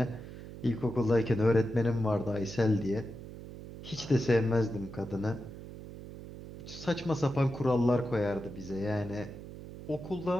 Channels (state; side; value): noise; right; hum, 13 dB below the sound